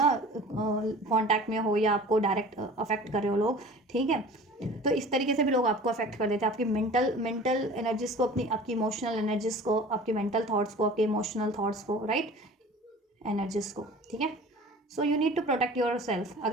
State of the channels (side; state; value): both; normal; correlation 0.42